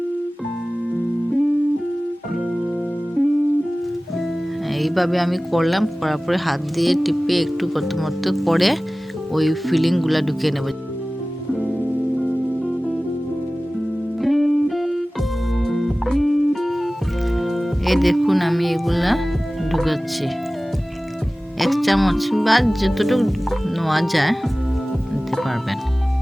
এইভাবে আমি করলাম, করার পরে হাত দিয়ে টিপে একটু প্রথমত করে ওই ফিলিংগুলো ঢুকিয়ে নেব। এই দেখুন আমি এগুলা ঢুকাচ্ছি, 1 চামচ বা যতটুকু নেওয়া যায় নিতে পারবেন।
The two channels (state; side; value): normal; both; correlation 0.97